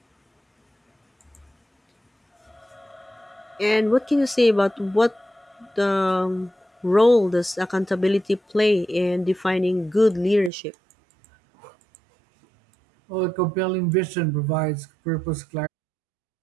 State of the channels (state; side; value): drops out; left; at 10.5 s